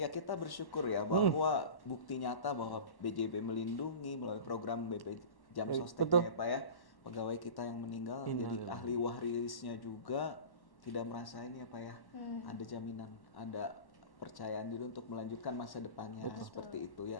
ya kita bersyukur ya bahwa bukti nyata bahwa BJB melindungi melalui program BP Jam Sostek ya Pak ya, pegawai kita yang meninggal jadi ahli warisnya juga tidak merasa ini ya Pak ya, ada jaminan, ada percayaan diri untuk melanjutkan masa depannya seperti itu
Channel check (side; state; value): right; late; 1.1 ms